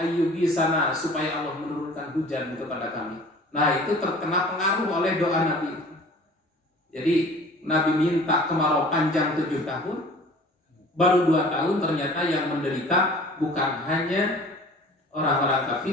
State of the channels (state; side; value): normal; both; correlation 0.46